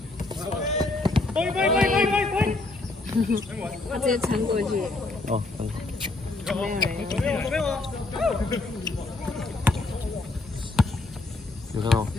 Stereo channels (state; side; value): quieter; right; 3.2 dB